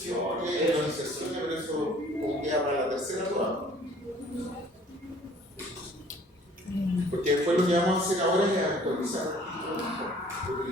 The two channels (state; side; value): normal; both; correlation 0.54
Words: las inserciones, pero eso como queda para la tercera prueba. Porque después lo que vamos a hacer ahora es actualizar,